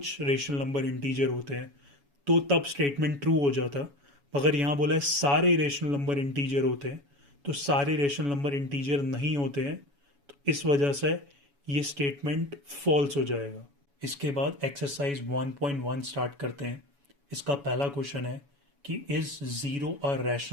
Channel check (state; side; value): late; left; 7.1 ms